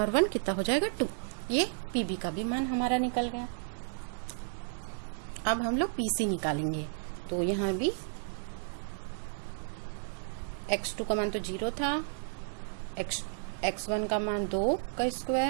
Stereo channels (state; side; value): silent; left; digital silence